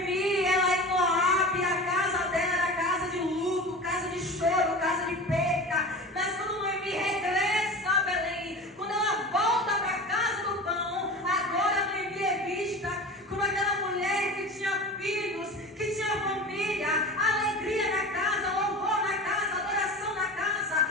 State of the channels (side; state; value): both; normal; correlation 0.33